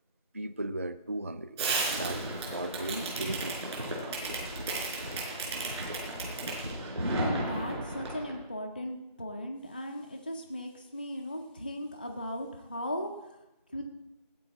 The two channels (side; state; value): both; inverted; correlation -0.48